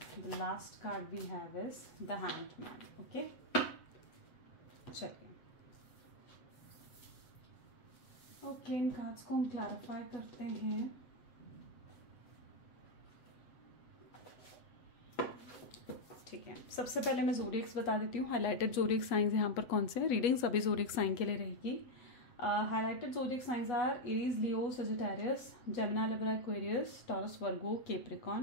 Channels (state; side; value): late; right; 8.3 ms